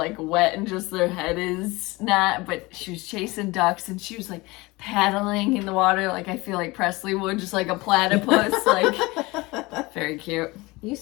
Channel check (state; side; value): quieter; right; 22.6 dB